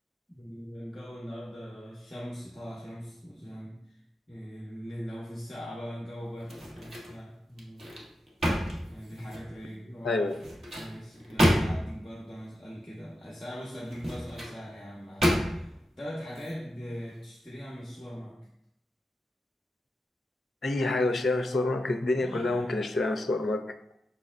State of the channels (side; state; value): both; normal; correlation 0.88